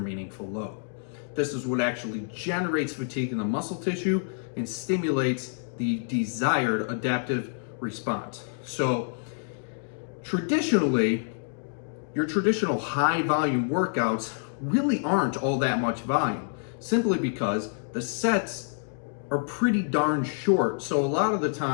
load. This is what actually generates fatigue in the muscle tissue and stimulates the desired adaptive response. So traditionally, your traditional high volume workouts really aren't all that much volume, simply because the sets are pretty darn short. So a lot of the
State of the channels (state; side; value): silent; right; digital silence